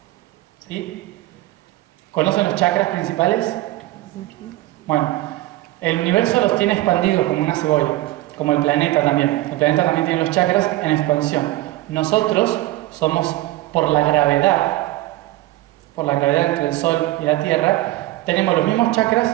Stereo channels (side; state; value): left; quieter; 17.0 dB